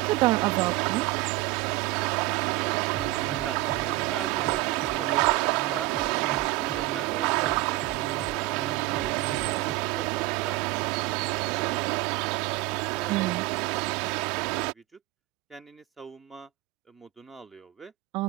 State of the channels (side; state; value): left; quieter; 18.7 dB